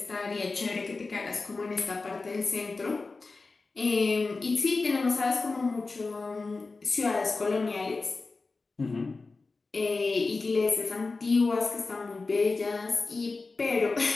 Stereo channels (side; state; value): right; quieter; 3.8 dB